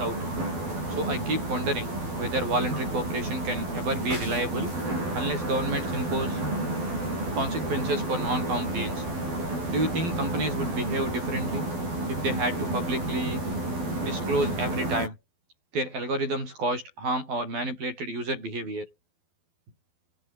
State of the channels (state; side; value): late; left; 12 ms